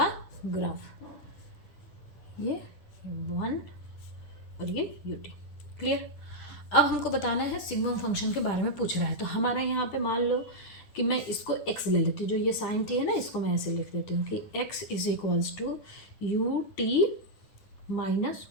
ग्राफ, ये 1 और ये ut, क्लियर। अब हमको बताना है सिग्मम फंक्शन के बारे में पूछ रहा है, तो हमारा यहाँ पे मान लो कि मैं इसको x ले लेती हूँ, जो ये साइन t है ना, इसको मैं ऐसे लिख देती हूँ कि x = ut - 1,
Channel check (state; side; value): late; right; 9.7 ms